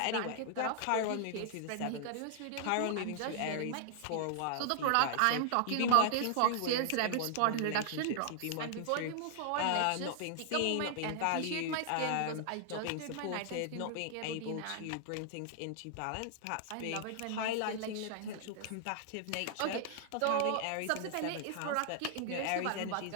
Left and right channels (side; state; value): both; different; correlation 0.00